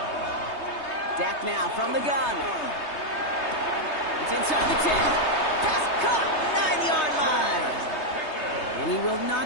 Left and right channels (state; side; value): late; right; 3.2 ms